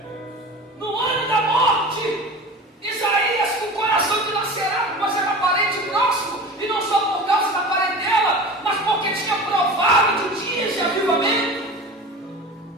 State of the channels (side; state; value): both; normal; correlation 0.35